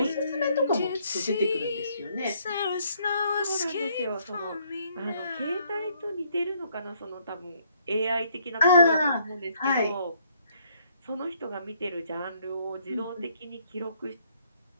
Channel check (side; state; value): both; inverted; correlation -0.67